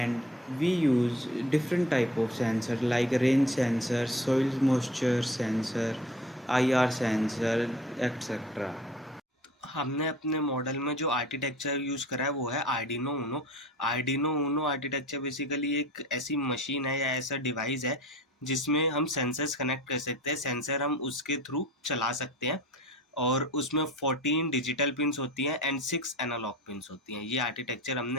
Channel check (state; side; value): normal; both; correlation 0.43